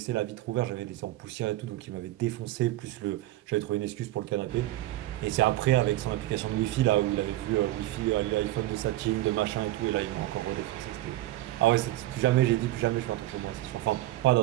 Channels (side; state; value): left; quieter; 16.0 dB